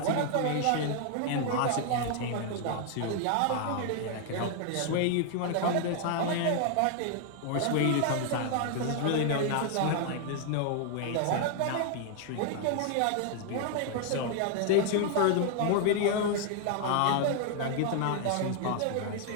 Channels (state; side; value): different; both; correlation 0.00